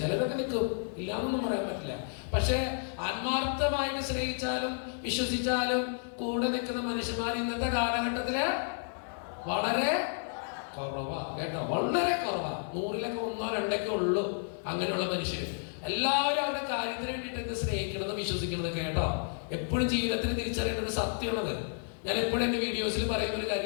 ചിലരൊക്കെ നിൽക്കും, ഇല്ലാന്നൊന്നും പറയാൻ പറ്റില്ല. പക്ഷെ ആത്മാർത്ഥമായിട്ട് സ്നേഹിച്ചാലും വിശ്വസിച്ചാലും കൂടെ നിൽക്കുന്ന മനുഷ്യന്മാർ ഇന്നത്തെ കാലഘട്ടത്തില് വളരെ കുറവാ. കേട്ടോ, വളരെ കുറവാ. 100-ലൊക്കെ 1-2 ഉള്ളൂ അങ്ങനെയുള്ള മനുഷ്യർ. എല്ലാവരും അവരുടെ കാര്യത്തിന് വേണ്ടിയിട്ട് സ്നേഹിക്കുന്നത് വിശ്വസിക്കുന്നത്. കേട്ടോ, എപ്പോഴും ജീവിതത്തിൽ തിരിച്ചറിയേണ്ടത് സത്യമുള്ളത്. ഞാൻ എപ്പോഴും എന്റെ വീഡിയോസിൽ പറയുന്ന ഒരു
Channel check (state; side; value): silent; right; 57 dB below the other